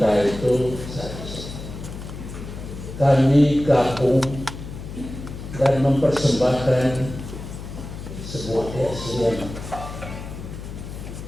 itu kami gabung dan mempersembahkan sebuah keaslian.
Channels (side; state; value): left; noise; hum, 10 dB below the sound